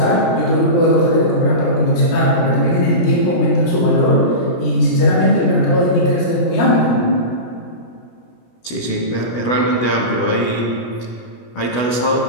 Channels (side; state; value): right; late; 16 ms